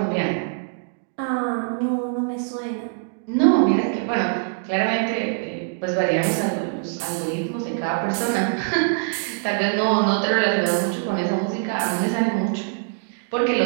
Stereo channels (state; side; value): silent; left; digital silence